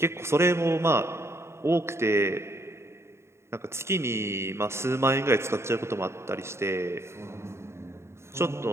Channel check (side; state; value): left; late; 0.13 ms